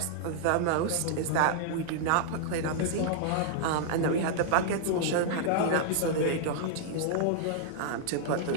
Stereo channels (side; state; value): both; different; correlation -0.01